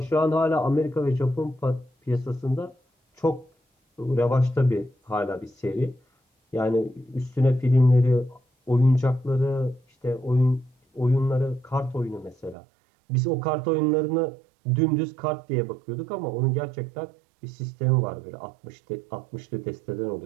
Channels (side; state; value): left; drops out; at 12.6 s